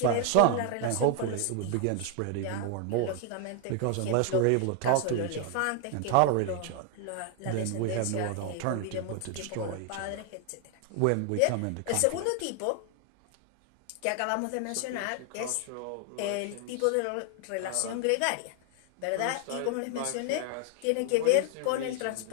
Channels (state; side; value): different; both; correlation 0.00